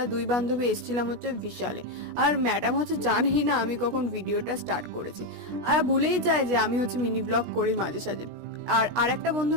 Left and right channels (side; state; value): left; late; 16 ms